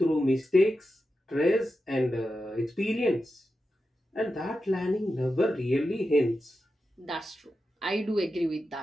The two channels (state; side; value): normal; both; correlation 0.90